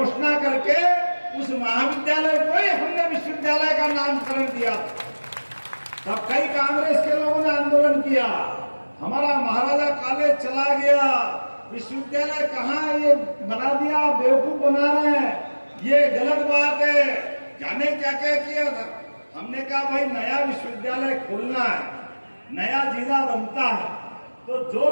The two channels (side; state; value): both; inverted; correlation -1.00